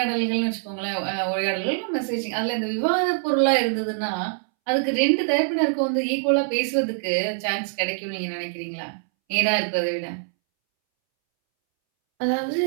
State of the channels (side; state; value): left; silent; 63 dB below the other